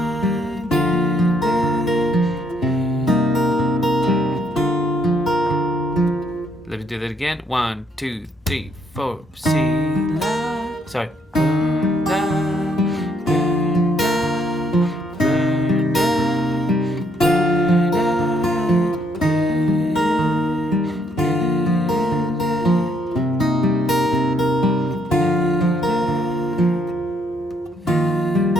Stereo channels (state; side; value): normal; both; correlation 0.71